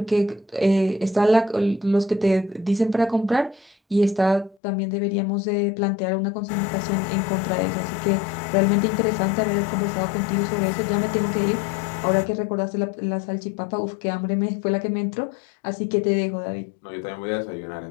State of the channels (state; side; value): drops out; right; at 4.5 s